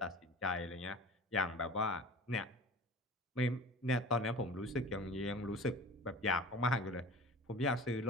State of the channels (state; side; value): normal; both; correlation 0.39